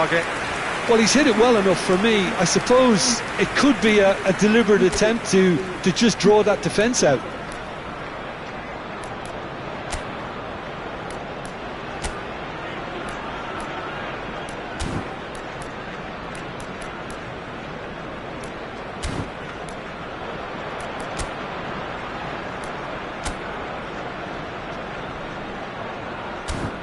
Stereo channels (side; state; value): both; identical; correlation 1.00